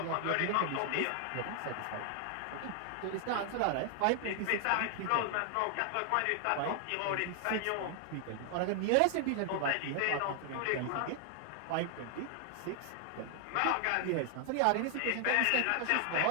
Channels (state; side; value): different; both; correlation 0.00